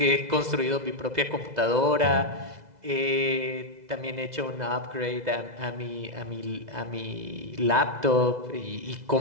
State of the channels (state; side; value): late; left; 2.0 ms